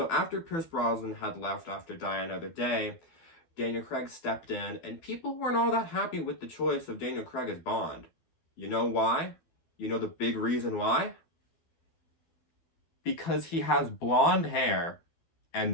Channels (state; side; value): late; right; 12 ms